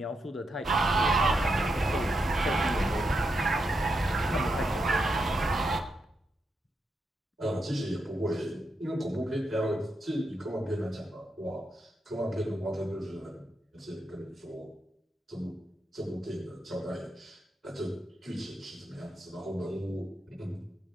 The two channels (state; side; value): normal; both; correlation 0.84